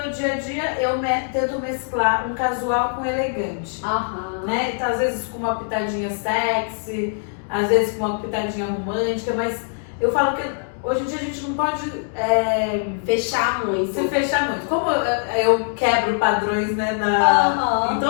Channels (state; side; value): silent; right; digital silence